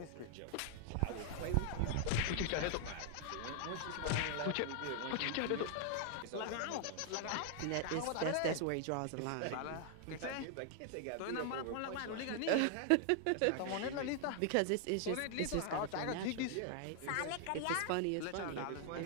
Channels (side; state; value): both; different; correlation 0.00